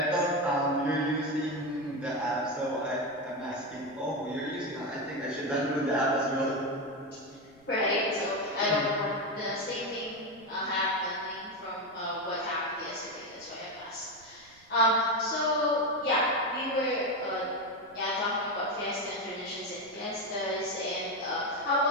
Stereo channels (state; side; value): noise; right; rumble, 29 dB below the sound